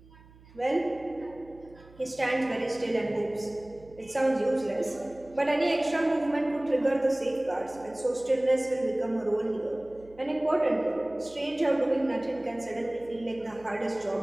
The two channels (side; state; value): right; noise; hum, 24 dB below the sound